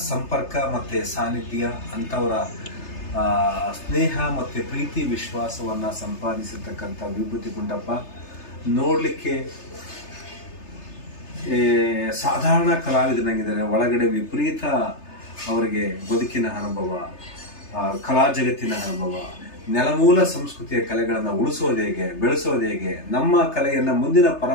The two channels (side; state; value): right; late; 3.3 ms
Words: ಸಂಪರ್ಕ ಮತ್ತು ಸಾನ್ನಿಧ್ಯ, ಅಂಥವರ ಸ್ನೇಹ ಮತ್ತು ಪ್ರೀತಿ ವಿಶ್ವಾಸವನ್ನು ಸಂಪಾದಿಸಿರ್ತಕ್ಕಂಥ ವಿಭೂತಿ ಗುಂಡಪ್ಪ ನೋಡಲಿಕ್ಕೆ ಸಾಧಾರಣ ಕಲಾವಿದನಾಗಿದ್ದಾರೆ. ಒಳಗಡೆ ವಿಪರೀತ ಅವರಿಗೆ ಬದುಕಿನ ಅನುಭವ, ಕಲಾ ಜಗತ್ತಿನ ಅನುಭವ, ನೆಲಮೂಲ ಸಂಸ್ಕೃತಿಯ ಕಲೆಗಳನ್ನು ಉಳಿಸೋದು ಹೇಗೆ, ಬೆಳೆಸೋದು ಹೇಗೆ, ನಮ್ಮ ಕಲೆಯನ್ನು ಮುಂದಿನ